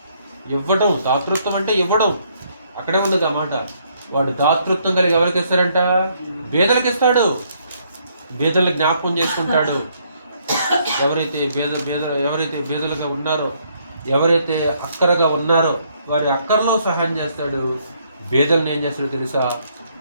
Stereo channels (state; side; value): inverted; both; correlation -0.70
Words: దాతృత్వం అంటే ఇవ్వడం. అక్కడే ఉంది ఆ మాట. వాడు దాతృత్వం కలిగి ఎవరికి ఇస్తాడంట? బేదలకు ఇస్తాడు. బేదలకు జ్ఞాపకం చేసుకుంటాడు. ఎవరైతే బేదలుగా ఉన్నారో, ఎవరైతే అక్కరగా ఉన్నారో వారి అక్కరలో సహాయం చేస్తాడు. బేదలను ఏం చేస్తాడో తెలుసా?